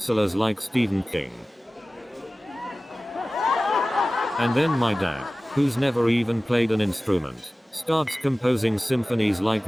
like Stephen King. And then my dad, who's never even played an instrument, starts composing symphonies like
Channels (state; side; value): normal; both; correlation 0.97